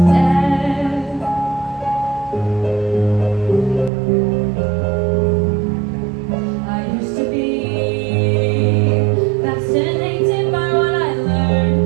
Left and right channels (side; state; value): left; drops out; at 3.9 s